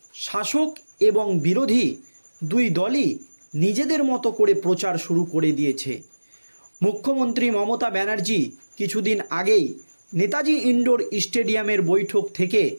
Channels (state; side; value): inverted; both; correlation -1.00